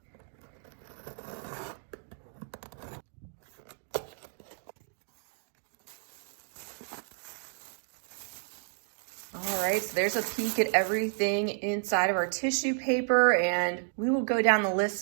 All right, so there's a peek at everything inside of our tissue paper, and we will go down the list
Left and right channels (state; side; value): silent; left; 57 dB below the other